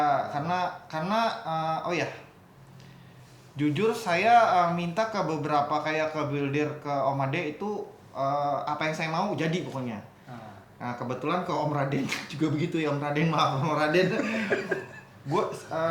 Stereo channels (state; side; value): identical; both; correlation 1.00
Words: karena oh ya, jujur saya minta ke beberapa kayak ke builder ke Om Ade itu apa yang saya mau jadi pokoknya. Nah kebetulan ke Om Raden juga begitu ya Om Raden, maaf Om Raden.